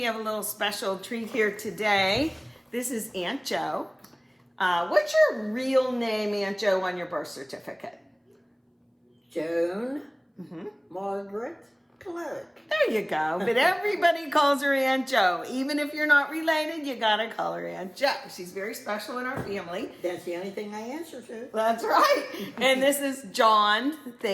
have a little special treat here today. This is Aunt Jo. What's your real name, Aunt Jo, on your birth certificate? Joan Margaret Clark. There you go. But everybody calls her Aunt Jo. Even if you're not related, you gotta call her Aunt Jo. She's very special in our family. That's the only thing I answer to. That's right. And this is John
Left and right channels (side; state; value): both; identical; correlation 1.00